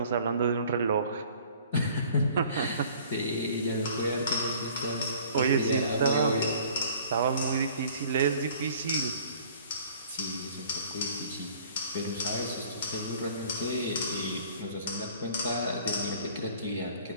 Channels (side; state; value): both; inverted; correlation -0.51